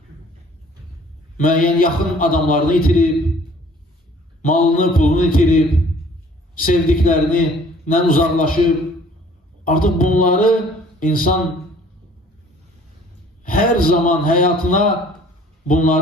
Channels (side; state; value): both; normal; correlation 0.54